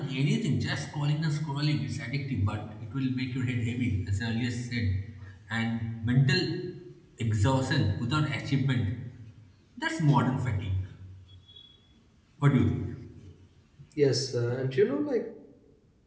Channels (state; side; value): identical; both; correlation 1.00